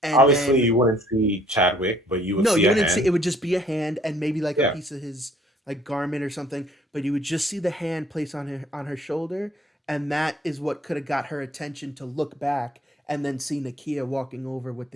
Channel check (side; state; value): both; normal; correlation 0.60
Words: and Obviously, then you wouldn't see Chadwick, but you would no, see you a wouldn't see hand. it would just be a hand and maybe like a Yeah, piece of his like garment or something, but you would just see the hand placed on her shoulder, and that is what could have got her attention to look back and then see Nakia walking over with